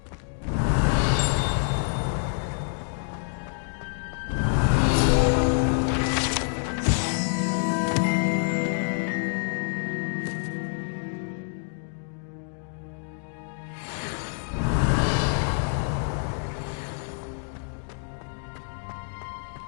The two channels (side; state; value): right; silent; 60 dB below the other